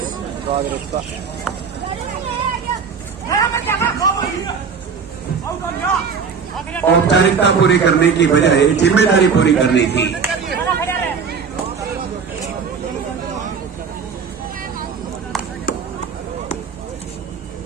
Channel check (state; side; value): quieter; left; 6.0 dB